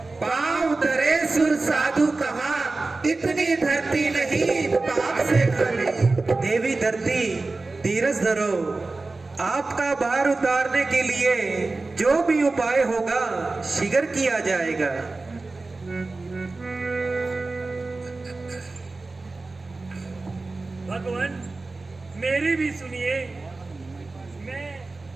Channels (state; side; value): quieter; left; 3.5 dB